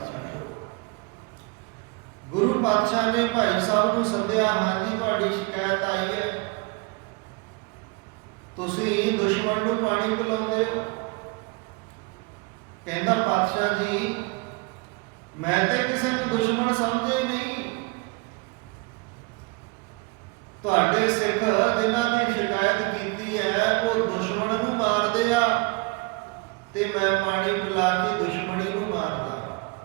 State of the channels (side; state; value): left; quieter; 28.1 dB